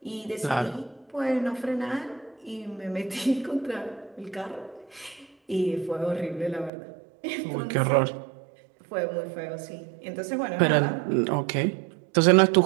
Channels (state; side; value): drops out; left; at 6.7 s